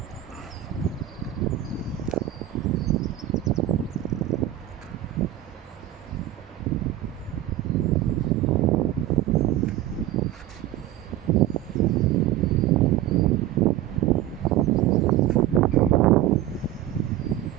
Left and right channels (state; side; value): quieter; left; 13.5 dB